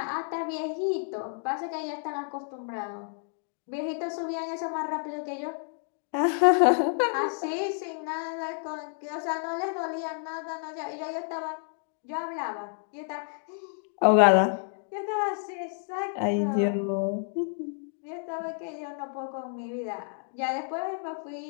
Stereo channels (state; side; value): silent; right; 58 dB below the other